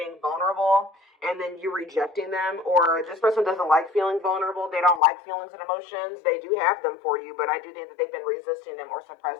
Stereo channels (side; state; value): right; drops out; at 5.0 s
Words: vulnerable and then you rejecting them, or this person doesn't like feeling vulnerable. They don't like feelings and emotions. They do have them for you, but I do think that they've been resisting them or